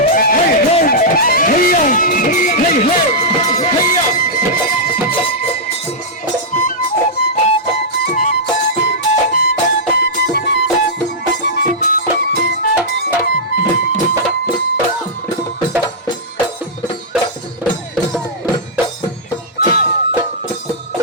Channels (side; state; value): both; normal; correlation -0.11